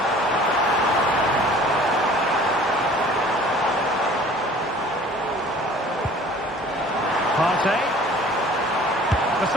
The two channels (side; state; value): both; normal; correlation 0.49